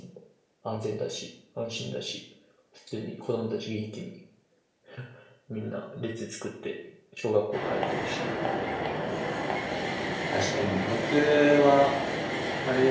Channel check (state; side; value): identical; both; correlation 1.00